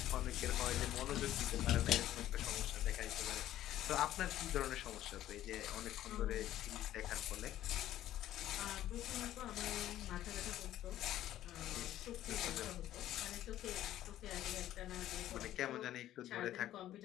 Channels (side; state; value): right; quieter; 13.1 dB